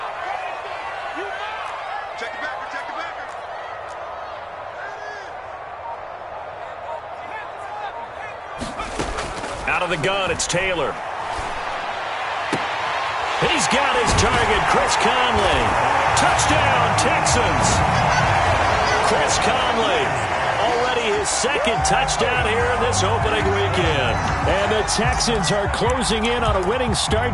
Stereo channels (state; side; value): identical; both; correlation 1.00